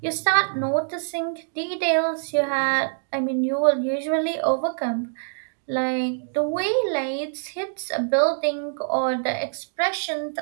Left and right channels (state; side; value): silent; left; digital silence